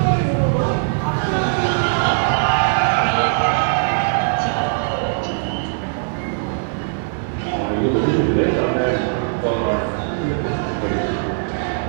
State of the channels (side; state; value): left; silent; digital silence